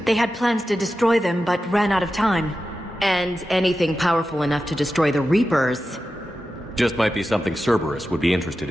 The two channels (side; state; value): both; normal; correlation 0.92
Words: They had plans to destroy them, but ran out of time. And anything powerful enough to destroy the Reapers. Just might be something Cerberus would be interested